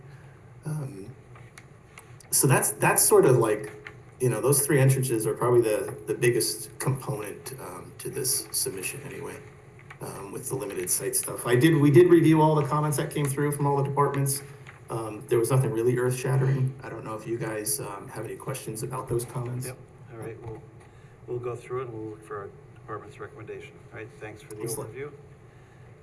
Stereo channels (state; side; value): identical; both; correlation 1.00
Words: So that's sort of like, those three entrances are probably the biggest component to this submission anyway, with the limited site stuff. We did review all the comments that came through from all the departments. There was nothing really earth shattering. I don't know if you guys have any questions about those comments. Yep, all right, we'll go through it and we'll look for our department's recommendation. All right, thanks for the Excellent. overview.